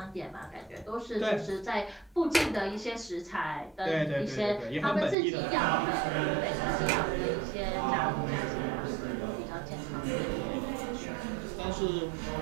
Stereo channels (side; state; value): left; drops out; at 5.2 s